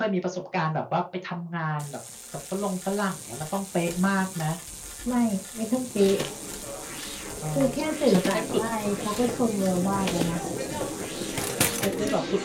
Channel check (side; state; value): both; identical; correlation 1.00